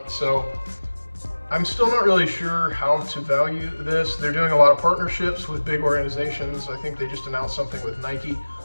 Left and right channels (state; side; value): inverted; both; correlation -1.00